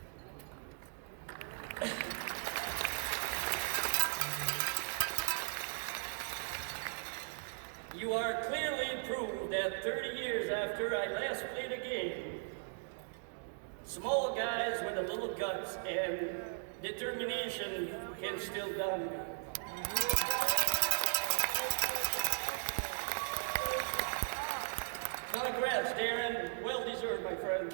You are clearly proved that 30 years after I last played a game, small guys with a little guts and determination can still dominate. Congrats, Darren. Well deserved, my friend.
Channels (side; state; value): left; silent; digital silence